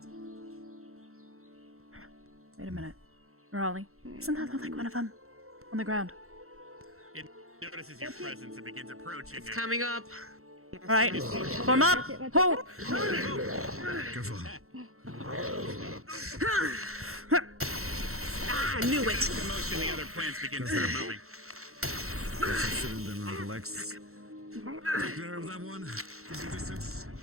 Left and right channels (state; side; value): late; left; 0.63 ms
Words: Wait a minute. Raleigh. Doesn't that look like one of them? On the ground. It notices your presence and begins approaching. It's coming up. Alright. Form up. Ho! Careful. I knew it. Commotion, the other plants begin to start moving. Shooting them on the legs. Take care of that one. Keep the distance.